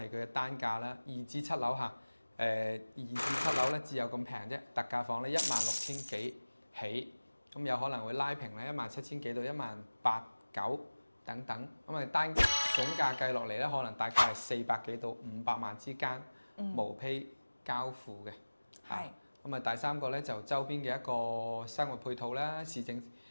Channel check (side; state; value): both; inverted; correlation -1.00